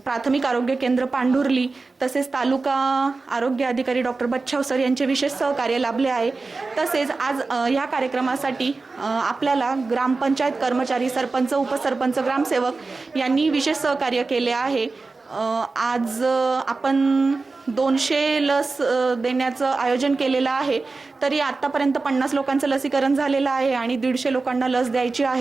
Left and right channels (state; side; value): quieter; left; 3.8 dB